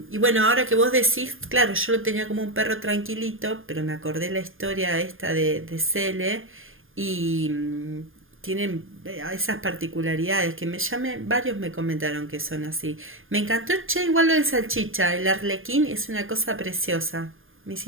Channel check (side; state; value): left; late; 0.59 ms